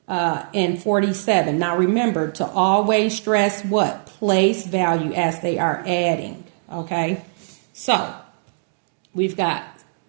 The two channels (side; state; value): left; silent; digital silence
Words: and 47. Now remember to always stress what? Place value as they are adding, okay? So we've got